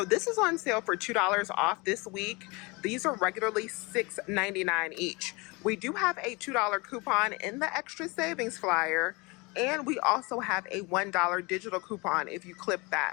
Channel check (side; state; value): right; quieter; 26.5 dB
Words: this is on sale for $2 off this week. These are regularly $6.99 each. We do have a $2 coupon in the extra savings flyer, and we also have a $1 digital coupon if you clip